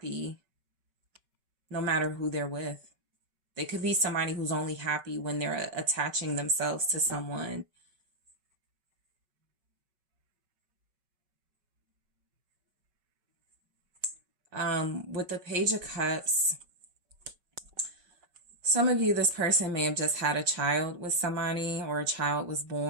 no matter who they're with. They could be somebody who's only happy when they're attaching themselves to someone. With the Page of Cups, some of you, this person may have just had a child with somebody or a child was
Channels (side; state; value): left; late; 5.3 ms